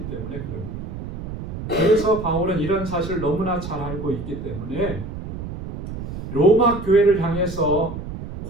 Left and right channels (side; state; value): right; noise; rumble, 8 dB below the sound